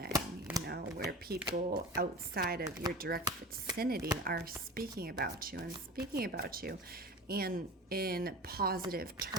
you know, where people outside of your direct vicinity are speaking about you and in positive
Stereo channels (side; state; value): both; normal; correlation 0.34